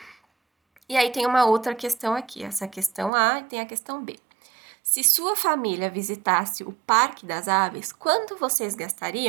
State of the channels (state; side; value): drops out; left; at 3.1 s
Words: E aí tem uma outra questão aqui, essa questão A e tem a questão B. Se sua família visitasse o Parque das Aves, quanto vocês